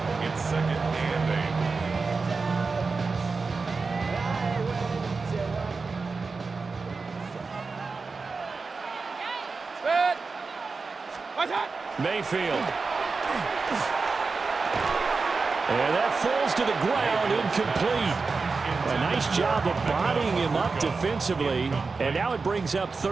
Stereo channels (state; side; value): quieter; left; 4.4 dB